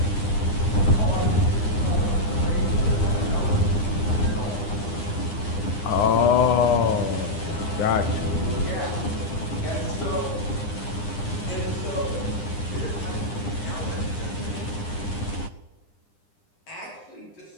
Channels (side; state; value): right; late; 9.9 ms